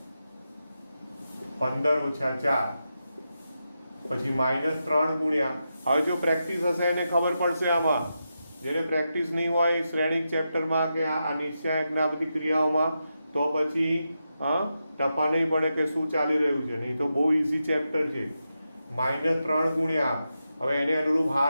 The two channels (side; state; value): both; inverted; correlation -0.88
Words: 15 ઓછા 4 પછી -3 ગુણ્યા. હવે જો પ્રેક્ટિસ હશે એને ખબર પડશે. આમાં જેને પ્રેક્ટિસ નહીં હોય શ્રેણિક ચેપ્ટરમાં કે આ નિશ્ચાયકના બધી ક્રિયાઓમાં, તો પછી ટપા નહીં પડે કે શું ચાલી રહ્યું છે. નહીં તો બહુ ઇઝી ચેપ્ટર છે. -3 ગુણ્યા, હવે એને અનુરૂપ